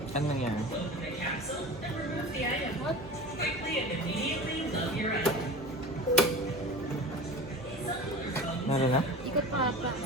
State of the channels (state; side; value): normal; both; correlation 0.36